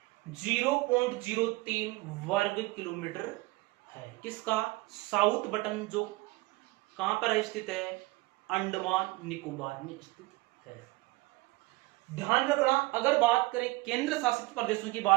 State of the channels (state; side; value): quieter; left; 22.0 dB